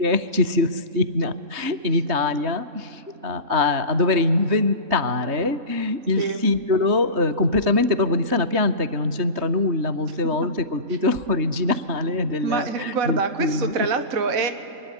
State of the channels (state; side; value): late; left; 3.2 ms